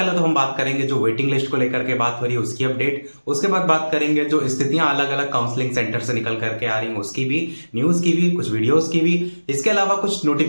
तो हम बात करेंगे जो वेटिंग लिस्ट को लेकर के बात हो रही है उसकी अपडेट। उसके बाद बात करेंगे जो स्थितियां अलग अलग काउंसलिंग सेंटर से निकल करके आ रही हैं उसकी भी, न्यूज की भी, कुछ वीडियोस की भी। इसके अलावा कुछ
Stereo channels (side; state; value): both; inverted; correlation -1.00